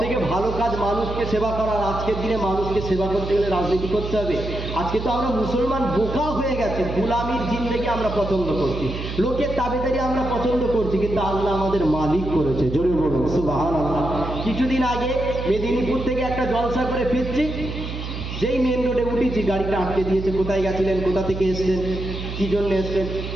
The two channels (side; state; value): right; noise; hum, 7 dB below the sound